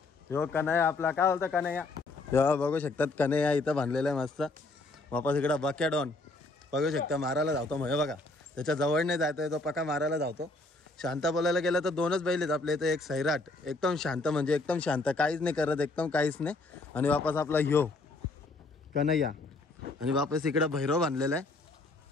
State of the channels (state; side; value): quieter; right; 3.1 dB